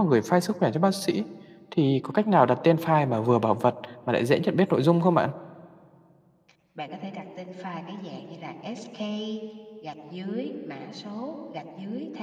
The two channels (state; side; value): identical; both; correlation 1.00